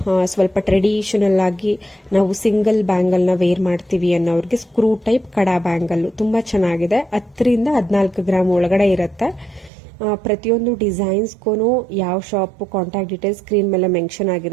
ಸ್ವಲ್ಪ ಟ್ರೆಡಿಷನಲ್ ಆಗಿ ನಾವು ಸಿಂಗಲ್ ಬ್ಯಾಂಗಲ್ ನ ವೇರ್ ಮಾಡ್ತೀವಿ ಅನ್ನೋರಿಗೆ ಸ್ಕ್ರೂ ಟೈಪ್ ಕಡಾ ಬ್ಯಾಂಗಲ್ ತುಂಬಾ ಚೆನ್ನಾಗಿದೆ. 10 ರಿಂದ 14 ಗ್ರಾಮ್ ಒಳಗಡೆ ಇರುತ್ತೆ. ಪ್ರತಿಯೊಂದು ಡಿಸೈನ್ಸ್ಗೂ ಯಾವ ಶಾಪ್ ಕಾಂಟ್ಯಾಕ್ಟ್ ಡೀಟೇಲ್ಸ್ ಸ್ಕ್ರೀನ್ ಮೇಲೆ ಮೆನ್ಷನ್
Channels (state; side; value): drops out; left; at 9.7 s